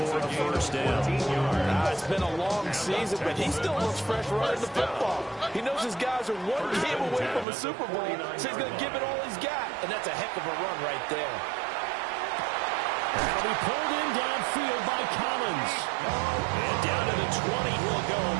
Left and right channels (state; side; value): drops out; left; at 7.5 s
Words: a first down. It's been a long season, but he still looks fresh running the football. He knows his guys are one game away from a Super Bowl, so he's going to give it all he's got. And that's a heck of a run right there. That'll be pulled in downfield by Collins. And down to the 20 he'll go